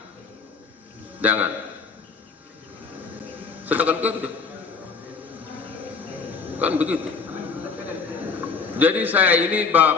Jangan. Sedangkan kerja. Kan begitu. Jadi saya ini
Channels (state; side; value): quieter; right; 5.2 dB